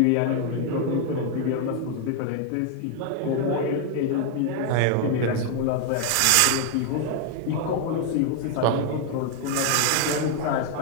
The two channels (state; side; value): different; both; correlation 0.00